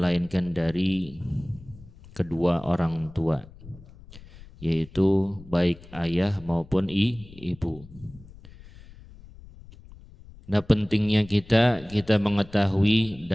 dari kedua orang tua, yaitu baik ayah maupun ibu. Nah, pentingnya kita mengetahui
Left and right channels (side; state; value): left; noise; rumble, 20 dB below the sound